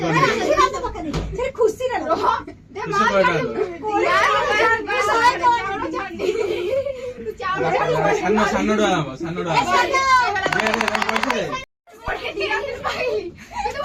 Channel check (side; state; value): both; identical; correlation 1.00